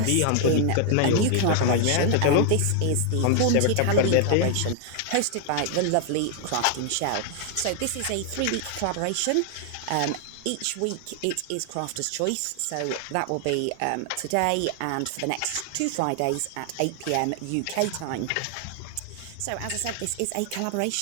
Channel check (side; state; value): both; different; correlation 0.00